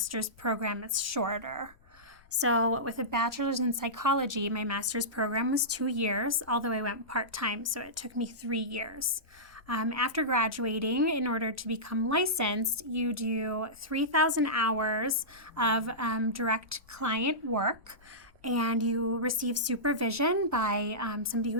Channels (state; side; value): noise; left; rumble, 27 dB below the sound